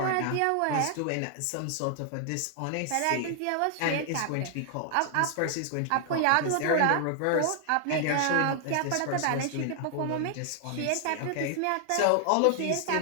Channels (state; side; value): different; both; correlation 0.00